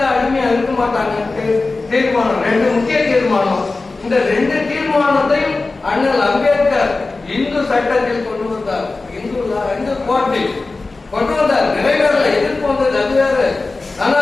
அடிமையா இருக்க மாட்டாங்க. தீர்மானம் 2 முக்கிய தீர்மானம். இந்த 2 தீர்மானத்தையும் அண்ணல் அம்பேத்கர் இந்து சட்டத்தில் கொண்டு வந்தார். இந்து கோர்ட்டில் கொண்டு வந்தார். நிறைவேறல, எதிர்ப்பு வந்தது, அது வேற. ஆனா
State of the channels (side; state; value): right; quieter; 3.6 dB